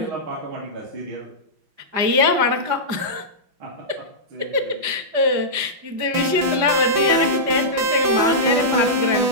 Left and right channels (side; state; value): left; late; 5.0 ms